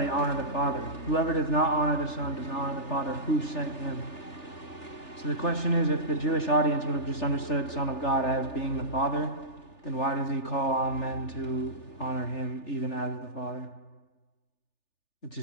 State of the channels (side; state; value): right; late; 3.4 ms